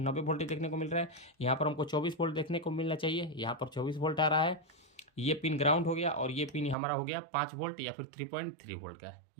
वोल्टेज देखने को मिल रहा है। यहाँ पर हमको 24 वोल्ट देखने को मिलना चाहिए। यहाँ पर 24 वोल्ट आ रहा है। ये पिन ग्राउंड हो गया और ये पिन हमारा हो गया 5 वोल्ट या फिर 3.3 वोल्ट का।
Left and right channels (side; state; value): left; drops out; at 6.8 s